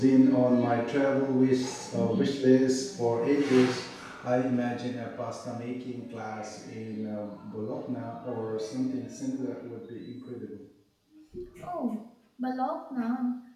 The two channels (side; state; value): both; identical; correlation 1.00